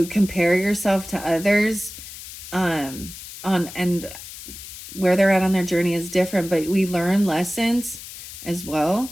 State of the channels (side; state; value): left; noise; hiss, 13 dB below the sound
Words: compare yourself to others, and where they're at on their journey is different, but we learn lessons as well.